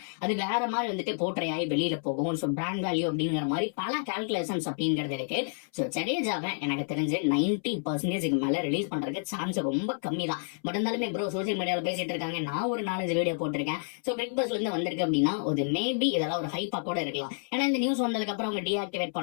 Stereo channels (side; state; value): right; silent; 58 dB below the other